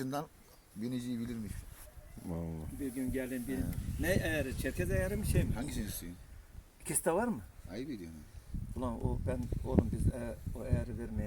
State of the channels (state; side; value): identical; both; correlation 1.00